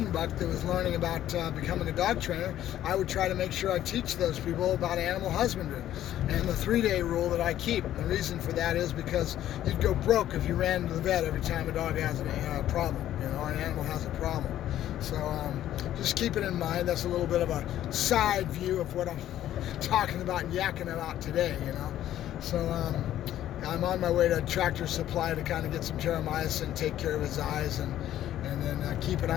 buck that was learning about becoming a dog trainer. I would try to make sure I teach those people about animal husbandry and the 3-day rule that I keep. The reason for that is because you'd go broke if you ran to the vet every time a dog has a problem, an animal has a problem. So just keep it in mind. That's a little bit of a side view of what I'm talking about and yakking about today, So I'm on my way to Tractor Supply to kind of get some terramycin, take care of his eyes, and then keep an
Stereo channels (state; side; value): quieter; right; 12.3 dB